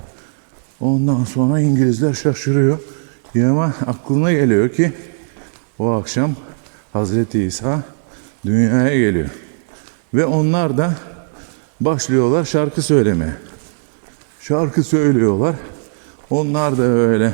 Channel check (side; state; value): left; silent; digital silence